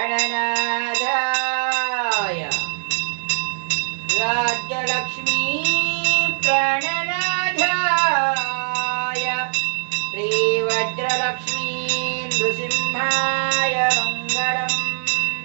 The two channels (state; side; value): silent; left; digital silence